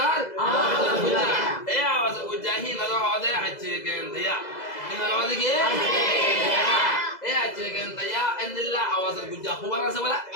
আওয়াজের গুজা এই আওয়াজের গুজা হি নলো হদে আছে কেন দিয়া কি নলো হদে কি এই আছে কেন দিয়া ইন্দিল্লা আওয়াজের গুজা খবর আছে বলা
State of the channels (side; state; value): right; late; 2.0 ms